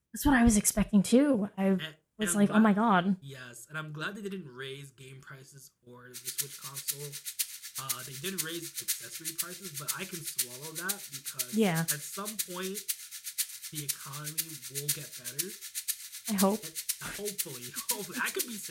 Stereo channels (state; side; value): identical; both; correlation 1.00